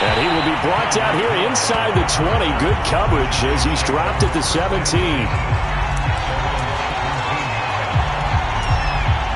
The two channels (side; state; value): both; identical; correlation 1.00